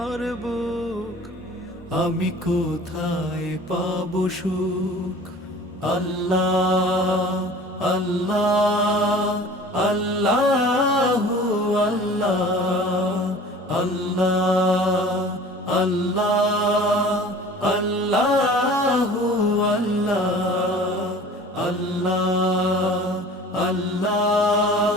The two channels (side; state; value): both; normal; correlation 0.44